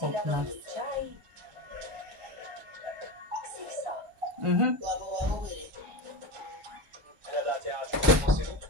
Okna. ľadový čaj. Xixo. Mhm. Hľadáte A-čkovú posilu?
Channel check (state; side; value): normal; both; correlation 0.22